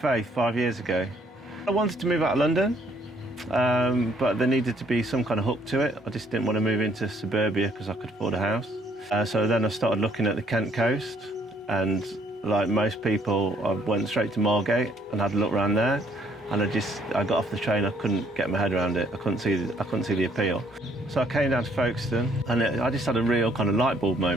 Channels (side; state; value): both; normal; correlation 0.66